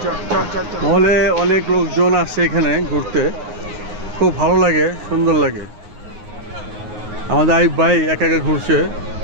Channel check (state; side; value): late; left; 9.5 ms